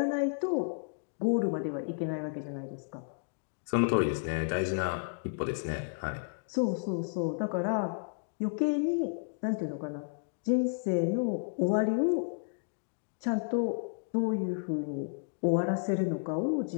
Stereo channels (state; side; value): silent; right; digital silence